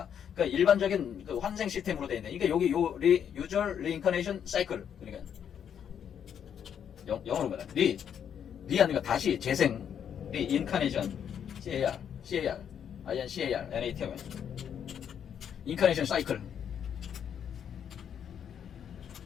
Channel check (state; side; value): quieter; right; 8.5 dB